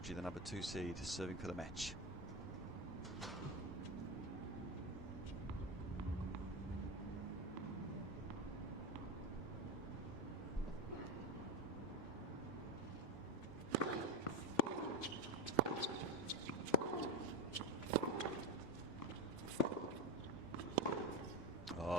the number 2 seed, serving for the match.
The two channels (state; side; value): normal; both; correlation 0.16